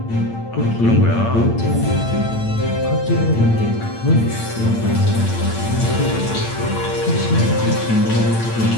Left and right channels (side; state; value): right; late; 8.9 ms